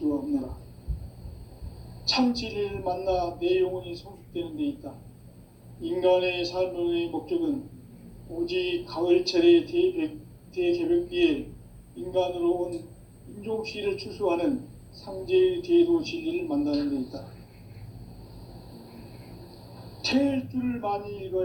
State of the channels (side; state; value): both; identical; correlation 1.00